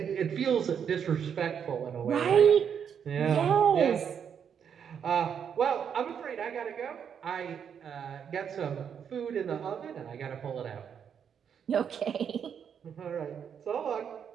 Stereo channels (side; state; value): left; quieter; 7.8 dB